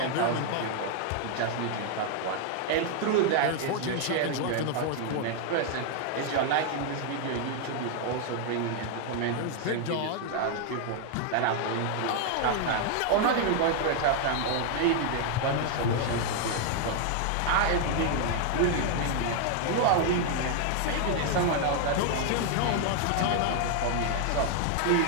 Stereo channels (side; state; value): both; different; correlation 0.00